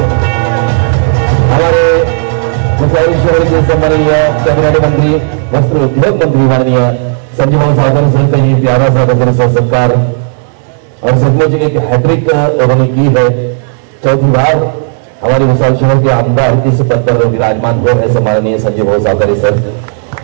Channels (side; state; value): left; silent; digital silence